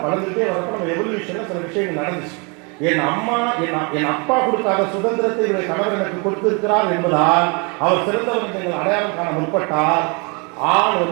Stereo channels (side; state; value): left; quieter; 32.1 dB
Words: வளர்ந்துட்டே வரப்ப நம்ம எவல்யூஷன்ல சில விஷயங்கள் நடந்துச்சு. என் அப்பா கொடுக்காத சுதந்திரத்தை இவருடைய கணவர் எனக்கு கொடுத்திருக்கிறார் என்பதால் அவர் சிறந்தவர் நீங்கள் அடையாளம் காண முற்பட்டால் ஆள்